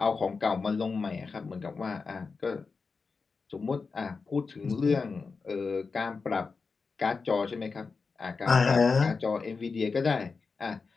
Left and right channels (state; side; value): quieter; right; 4.7 dB